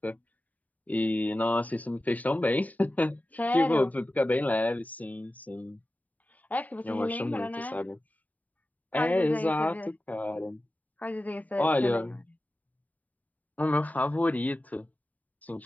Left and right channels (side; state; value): right; late; 0.074 ms